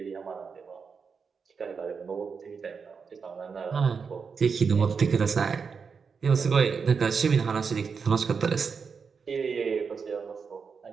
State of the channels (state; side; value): quieter; left; 5.7 dB